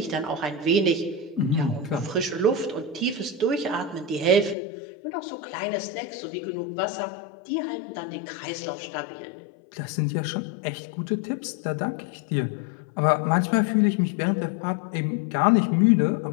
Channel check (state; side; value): drops out; right; at 4.5 s